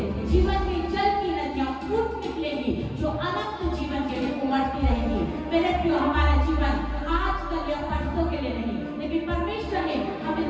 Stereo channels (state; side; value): identical; both; correlation 1.00